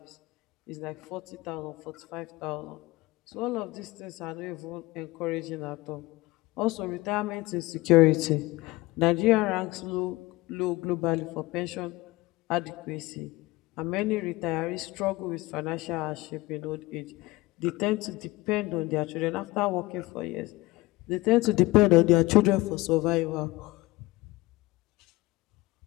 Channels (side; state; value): right; quieter; 20.6 dB